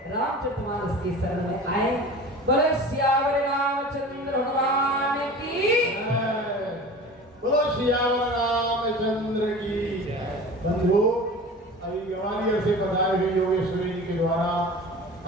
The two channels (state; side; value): normal; both; correlation 0.37